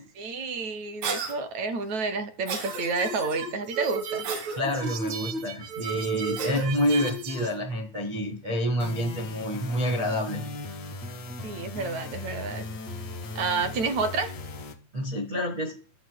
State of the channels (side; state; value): left; late; 8.9 ms